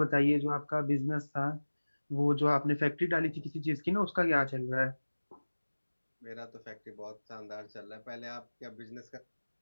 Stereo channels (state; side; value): inverted; both; correlation -1.00